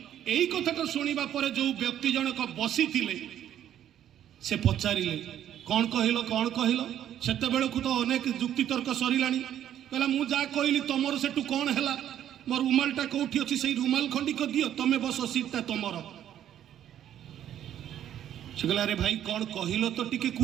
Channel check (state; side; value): quieter; left; 10.8 dB